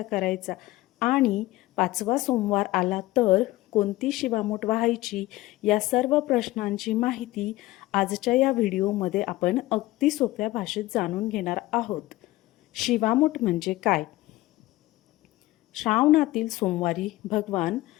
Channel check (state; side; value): quieter; right; 17.9 dB